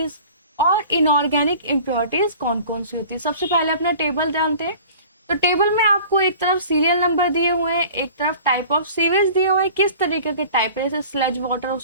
और इनऑर्गेनिक इम्प्योरिटीज कौन कौन सी होती है। सबसे पहले अपना टेबल जानते हैं। तो टेबल में आपको एक तरफ सीरियल नंबर दिए हुए हैं, एक तरफ टाइप ऑफ सीवेज दिए हुए हैं, किस तरीके के टाइप है, जैसे स्लज वाटर हो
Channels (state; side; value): inverted; both; correlation -0.44